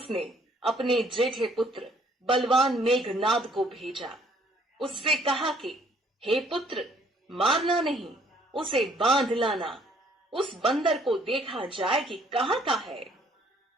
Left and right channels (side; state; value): both; normal; correlation 0.62